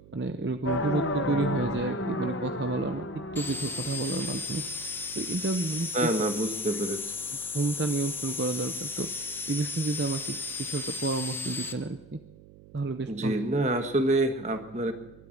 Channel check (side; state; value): right; noise; hum, 22 dB below the sound